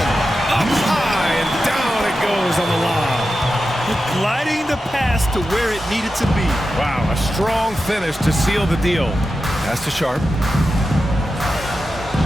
Up high and down it goes on the lob. Gliding the pass to where it needed to be. Wow, a strong finish to seal the deal. Pass to Sharp.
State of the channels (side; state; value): both; normal; correlation 0.91